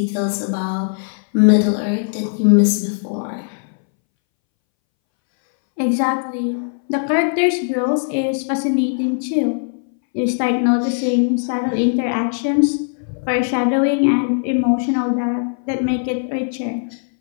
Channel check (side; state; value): right; silent; 64 dB below the other